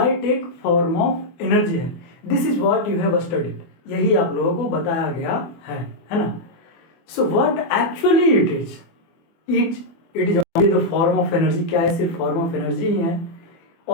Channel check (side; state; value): right; late; 24 ms